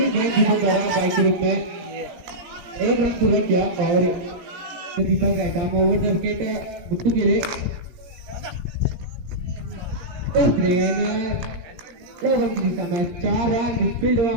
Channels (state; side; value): late; left; 17 ms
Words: गेंद जिसे करा बाइक के रूप में, 1 रन पूरा किया और Deepak right arm over the wicket Guddu के लिए बेहतरीन रन की दिशा में 4 रन। मिसफील्ड हुआ